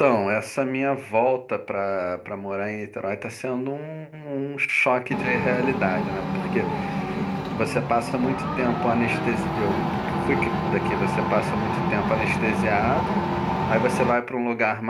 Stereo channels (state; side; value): identical; both; correlation 1.00